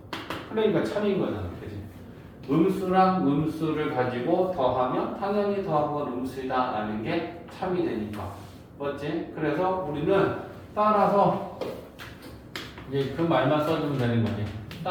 그러니까 참인 거잖아. 그치? 음수랑 음수를 가지고 더하면 당연히 더한 건 음수이다 라는 게 참이 되니까. 맞지? 그래서 우리는 따라서 이제 그 말만 써주면 되는 거지.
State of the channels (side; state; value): both; identical; correlation 1.00